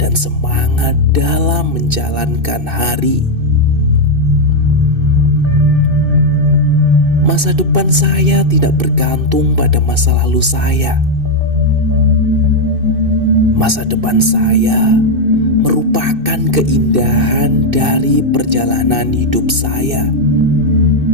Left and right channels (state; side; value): late; left; 2.6 ms